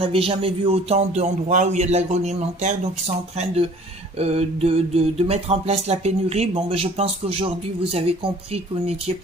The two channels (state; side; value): normal; both; correlation 0.51